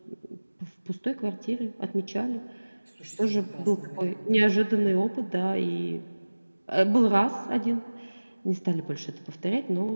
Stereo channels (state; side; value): inverted; both; correlation -1.00